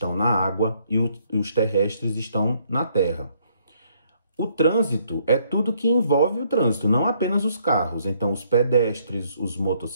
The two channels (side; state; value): both; inverted; correlation -0.68